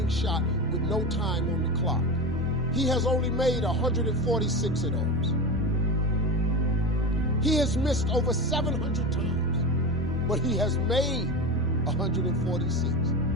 shot with no time on the clock. He has only made 146 of those. He has missed over 700 times, but he has made 146.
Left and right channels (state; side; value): normal; both; correlation 0.24